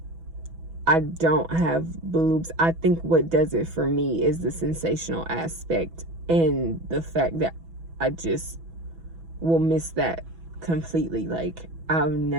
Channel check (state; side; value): late; left; 6.1 ms